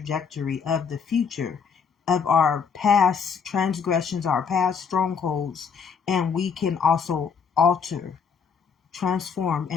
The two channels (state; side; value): quieter; right; 6.2 dB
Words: of the future of our past transgressions, our past strongholds, and we can also alter, transform,